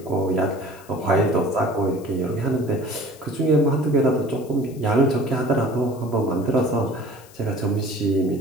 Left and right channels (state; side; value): noise; left; hiss, 24 dB below the sound